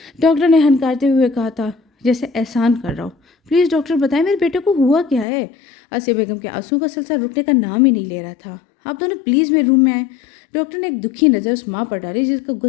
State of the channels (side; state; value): right; drops out; at 5.2 s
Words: ڈاکٹر نے ہنکارتے ہوئے کہا تھا، جیسے احسان کر رہا ہوں۔ پلیز ڈاکٹر بتائیں میرے بیٹے کو ہوا کیا ہے؟ آسیہ بیگم کے آنسوؤں کا سلسلہ رکنے کا نام ہی نہیں لے رہا تھا۔ آپ دونوں پلیز میرے روم میں آئیں۔ ڈاکٹر نے ایک دکھی نظر اس ماں پر ڈالی جس کا